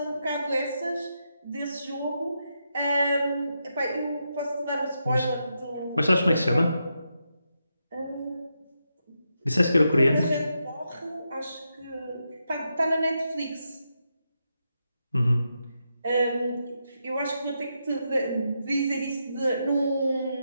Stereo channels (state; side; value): inverted; both; correlation -0.84